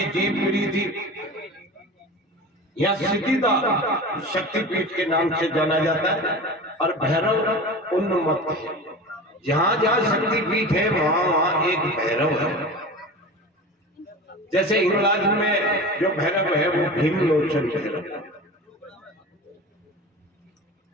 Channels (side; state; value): both; normal; correlation 0.33